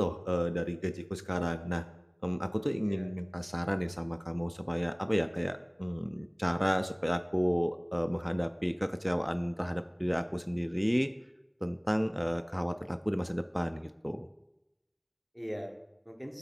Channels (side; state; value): both; identical; correlation 1.00